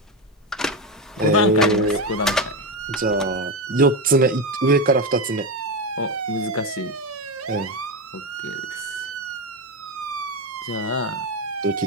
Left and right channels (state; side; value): normal; both; correlation 0.14